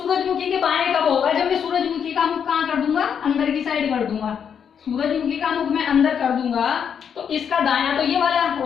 के बाएं कब होगा, जब मैं सूरजमुखी का मुख कहाँ कर दूंगा, अंदर की साइड कर दूंगा। सूरजमुखी का मुख मैं अंदर कर दूंगा तो इसका दायां तो ये वाला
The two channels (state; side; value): quieter; right; 7.6 dB